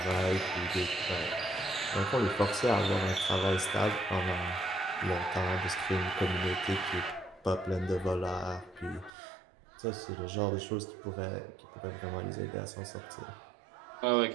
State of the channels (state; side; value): drops out; left; at 9.1 s